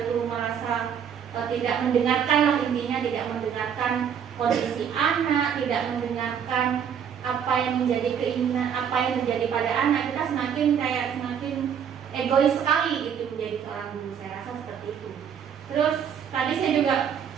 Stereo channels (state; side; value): quieter; left; 8.0 dB